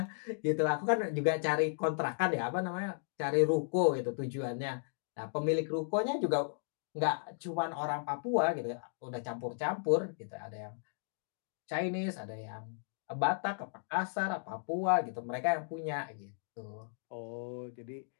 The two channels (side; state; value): right; silent; digital silence